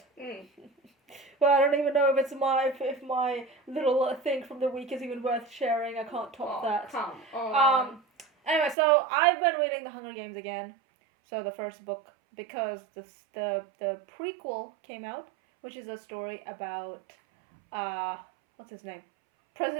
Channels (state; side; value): drops out; left; at 8.8 s